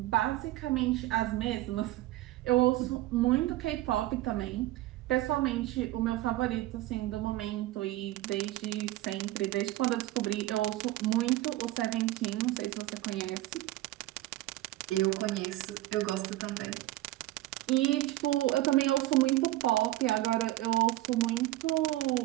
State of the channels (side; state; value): left; quieter; 16.5 dB